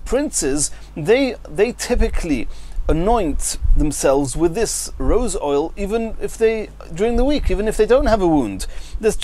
they typically anoint themselves with this rose oil, even if during the week, even if they don't have a wound.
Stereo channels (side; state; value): both; identical; correlation 1.00